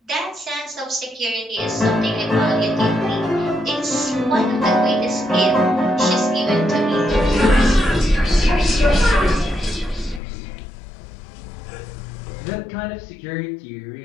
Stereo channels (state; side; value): drops out; right; at 10.2 s